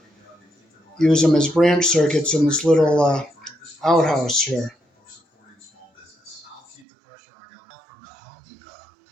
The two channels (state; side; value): drops out; left; at 6.9 s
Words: use them as branch circuits in this little outhouse here.